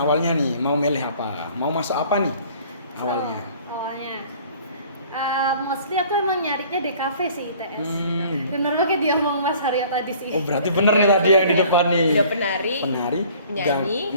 nih mau milih apa? Mau masuk apa nih? Awalnya. Awalnya mostly aku emang nyarinya DKV sih ITS. Bener banget dia ngomong Mas Haryo tadi sih. Oh berarti bener nih tadi yang di depan nih. Udah penari,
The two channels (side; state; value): both; inverted; correlation -0.52